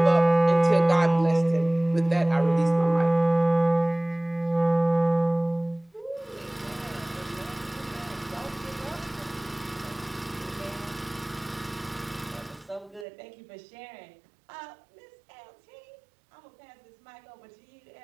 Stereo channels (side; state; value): left; drops out; at 13.1 s